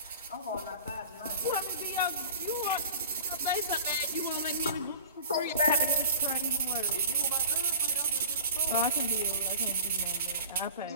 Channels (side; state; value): both; inverted; correlation -0.40